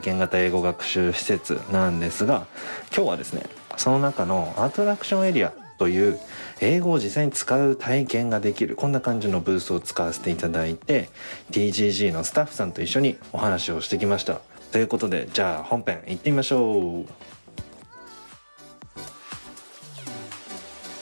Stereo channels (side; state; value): both; inverted; correlation -1.00